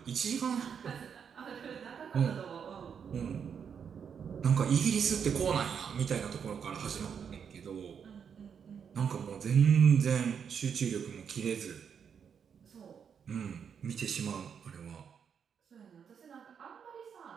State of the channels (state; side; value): quieter; left; 7.2 dB